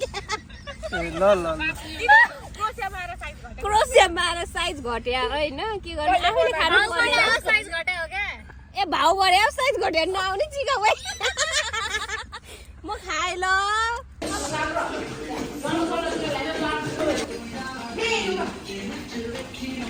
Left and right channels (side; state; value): both; identical; correlation 1.00